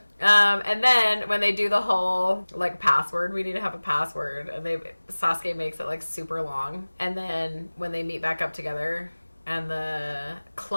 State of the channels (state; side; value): inverted; both; correlation -1.00